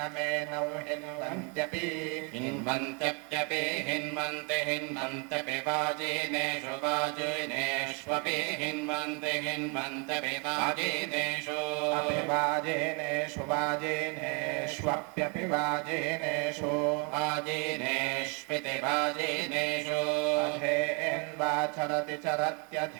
मे नौ हिन्वन्त्यपि हिन्वन्त्यप्यपि हिन्वन्ते हिन्वन्त्यपि वाजिनेषु वाजिनेष्वपि हिन्वन्ते हिन्वन्त्यपि वाजिनेषु वाजिनेषु वाजिनेष्वप्यपि वाजिनेषु वाजिनेष्विति वाजिनेषु अधेन्वाचरति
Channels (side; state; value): left; quieter; 35.0 dB